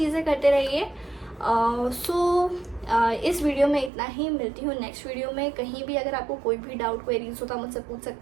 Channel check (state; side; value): drops out; left; at 3.9 s